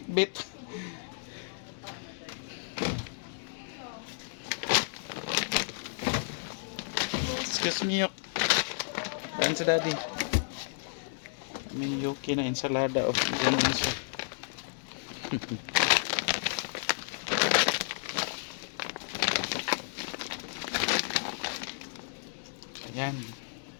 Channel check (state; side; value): silent; right; digital silence